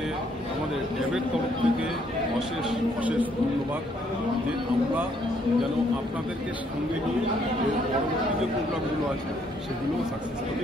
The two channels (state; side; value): normal; both; correlation 0.69